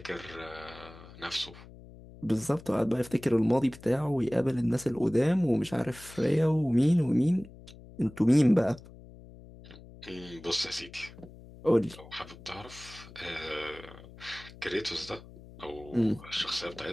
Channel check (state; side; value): noise; left; hum, 19 dB below the sound